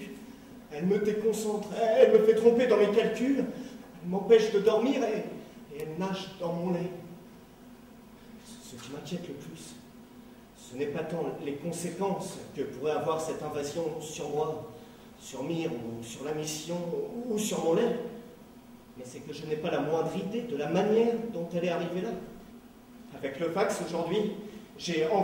Elle me déconcentre. Elle me fait tromper dans mes calculs. Elle m'empêche de dormir et elle nage dans mon lait. Ce qui m'inquiète le plus, ce n'est pas tant les conséquences que pourrait avoir cette invasion sur moi, sur Myre, ou sur la mission, ou sur mon lait, mais c'est que je n'ai pas la moindre idée de la manière dont elle est arrivée là. Avec le fax aujourd'hui, j'ai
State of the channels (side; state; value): both; identical; correlation 1.00